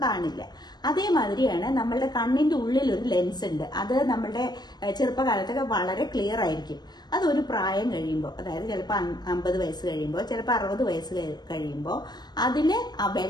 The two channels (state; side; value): late; right; 0.20 ms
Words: കാണില്ല. അതേമാതിരിയാണ് നമ്മളുടെ കണ്ണിന്റെ ഉള്ളിൽ ഒരു ലെൻസ് ഉണ്ട്. അത് നമ്മളുടെ ചെറുപ്പകാലത്തൊക്കെ വളരെ ക്ലിയർ ആയിരിക്കും. അതൊരു പ്രായം കഴിയുമ്പോൾ, അതായത് ചിലപ്പോൾ 50 വയസ്സ് കഴിയുമ്പോൾ, ചിലപ്പോൾ 60 വയസ്സ് കഴിയുമ്പോൾ അതിന് ആ